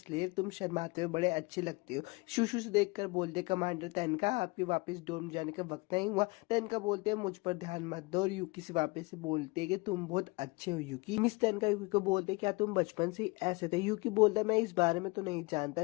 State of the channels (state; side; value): quieter; right; 25.9 dB